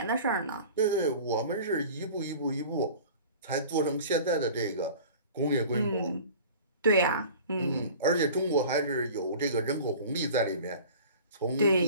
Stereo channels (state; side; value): inverted; both; correlation -0.41